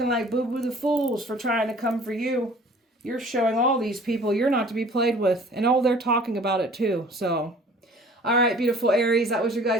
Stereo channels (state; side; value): normal; both; correlation 0.50